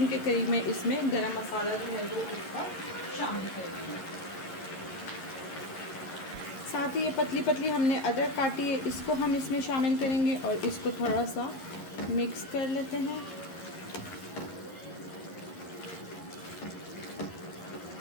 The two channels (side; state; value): right; late; 11 ms